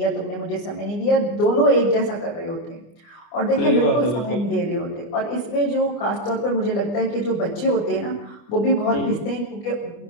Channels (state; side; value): late; right; 25 ms